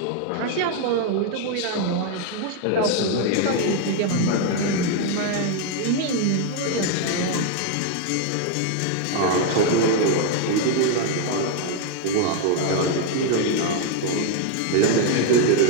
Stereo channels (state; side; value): different; both; correlation 0.01